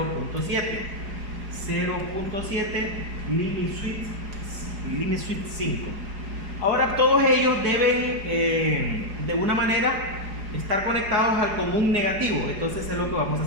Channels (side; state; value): left; late; 4.8 ms